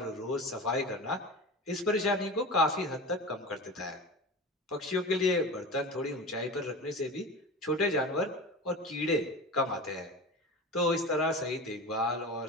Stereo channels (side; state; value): both; normal; correlation 0.30